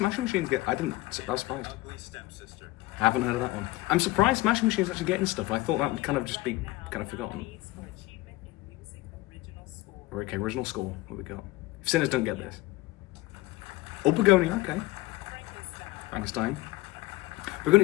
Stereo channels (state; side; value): quieter; right; 19.4 dB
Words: Machines I was surprised. Haven't heard of that one. I'm surprised Smashing Machines actually getting stuff. I thought that would kind of just be kind of forgotten. Okay, original score, what we got? If Sinners don't get this. Oh, Begonia, okay. Frankenstein.